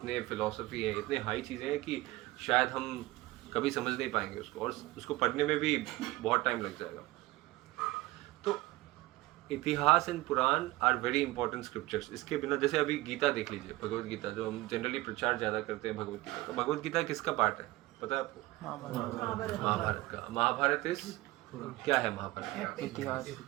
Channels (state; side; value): quieter; left; 19.0 dB